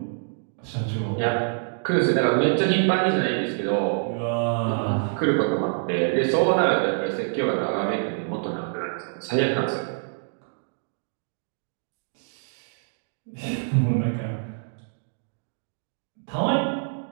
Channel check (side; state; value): left; silent; digital silence